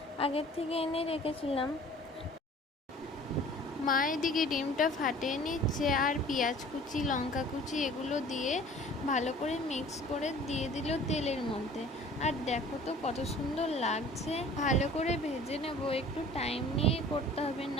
আগের থেকে এনে রেখেছিলাম। মা এদিকে ডিমটা ফাটিয়ে নিচ্ছে আর পেঁয়াজ কুচি, লঙ্কা কুচি এগুলো দিয়ে ভালো করে মিক্স করে দিয়ে দিল তেলের মধ্যে। আর দেখো তো কত সুন্দর লাগছে। ভালো করে ভেজে নেব, একটু টাইম নিয়ে করতে হবে,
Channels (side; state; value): both; normal; correlation 0.48